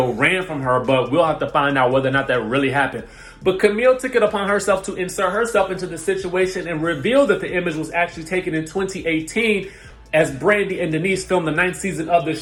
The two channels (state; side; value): identical; both; correlation 1.00